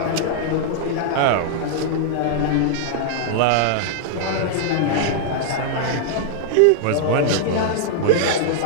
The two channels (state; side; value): different; both; correlation -0.01